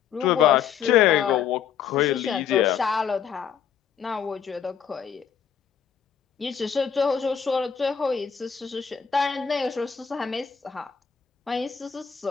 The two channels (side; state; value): right; quieter; 7.8 dB